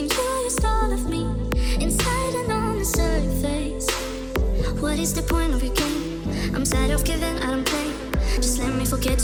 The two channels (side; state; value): both; identical; correlation 1.00